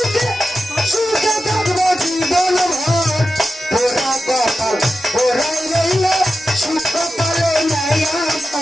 সুখে থাকবো জীবন ভর পোড়া কপাল পোড়াই রইল সুখ পালে নাই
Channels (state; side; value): normal; both; correlation 0.91